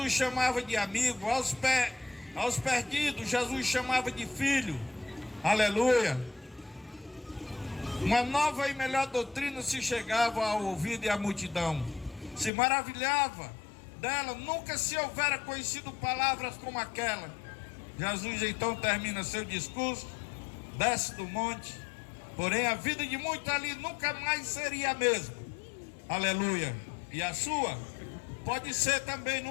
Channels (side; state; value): right; drops out; at 12.5 s